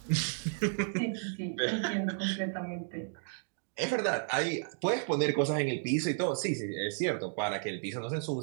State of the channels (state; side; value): silent; left; digital silence